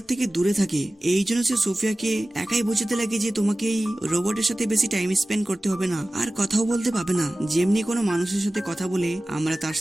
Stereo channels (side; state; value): both; normal; correlation 0.97